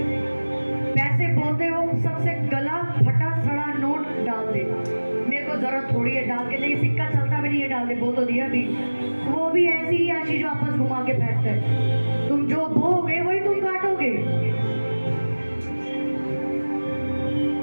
पैसे बोलते हो, सबसे गला फटा सड़ा नोट डाल दे। मेरे को जरूरत थोड़ी है डाल के, नहीं सिक्का चलता भी नहीं, नहीं डालते, बो तो दिया बीज, वो भी ऐसी ही आशीष वापस घुमा के फेंकता है। तुम जो बोगे वही तुम काटोगे,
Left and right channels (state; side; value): inverted; both; correlation -1.00